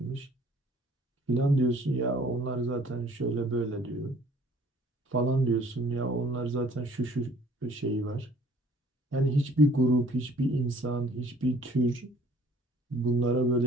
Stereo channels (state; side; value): normal; both; correlation 0.56